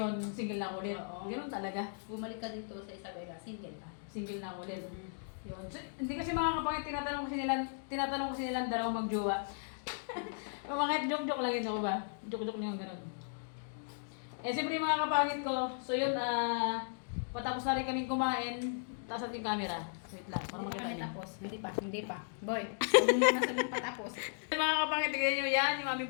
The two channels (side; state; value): right; silent; digital silence